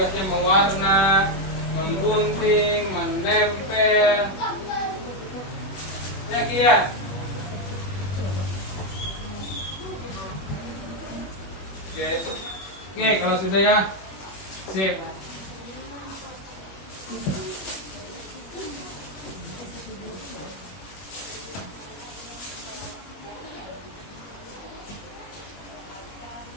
mewarna, menggunting, menempel. Ya, Kia. Oke, kalau sudah ya, sip.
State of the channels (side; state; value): right; late; 21 ms